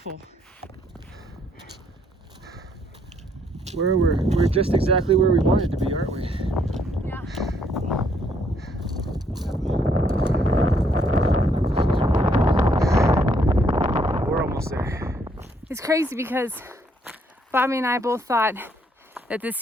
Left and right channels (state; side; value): normal; both; correlation 0.69